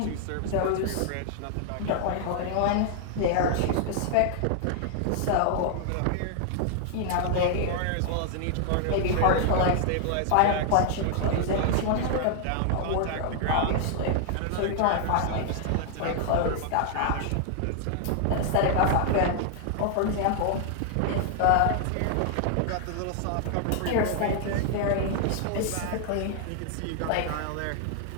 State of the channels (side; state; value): both; different; correlation 0.00